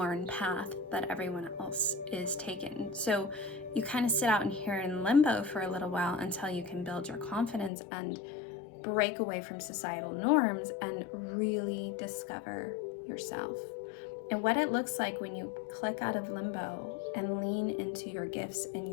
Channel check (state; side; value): drops out; right; at 7.7 s